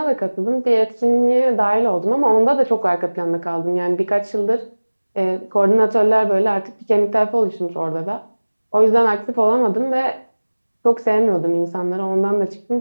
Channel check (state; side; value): inverted; both; correlation -1.00